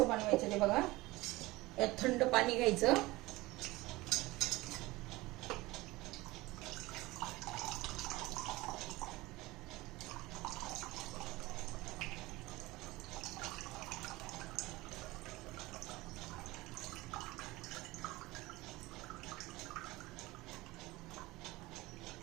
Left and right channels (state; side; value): quieter; left; 20.2 dB